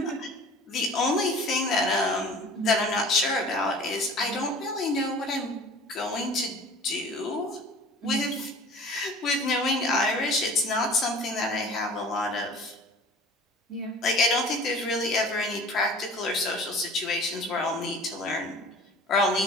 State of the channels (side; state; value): both; normal; correlation 0.44